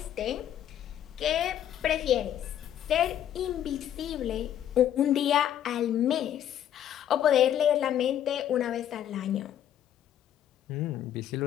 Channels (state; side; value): quieter; right; 10.7 dB